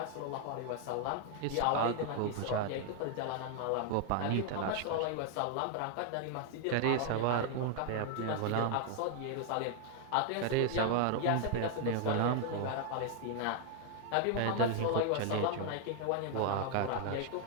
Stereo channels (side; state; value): both; different; correlation 0.00